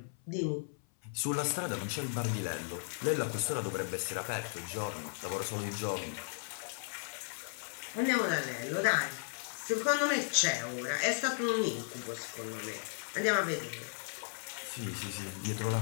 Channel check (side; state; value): right; silent; 54 dB below the other